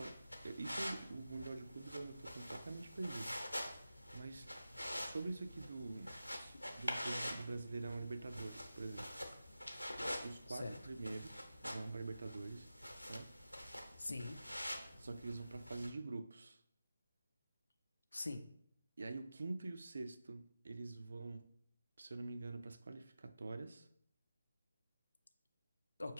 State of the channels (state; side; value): inverted; both; correlation -0.93